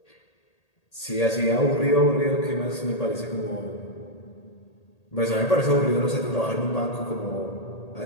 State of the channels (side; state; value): right; late; 1.8 ms